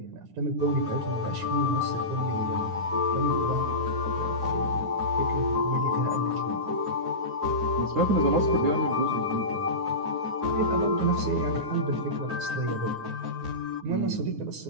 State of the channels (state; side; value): late; left; 9.6 ms